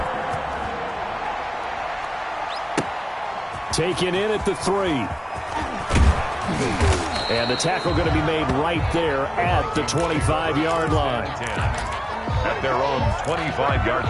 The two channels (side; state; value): both; identical; correlation 1.00